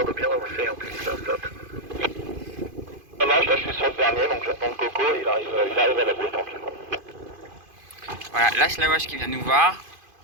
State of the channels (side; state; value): left; late; 2.5 ms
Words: de bien avancer en plus, là, stop. Ça marche, là je suis sur le dernier, donc j'attends le coco, il arrive à la bouée tranquillement. Voilà, lâche la wash qui vient nous voir.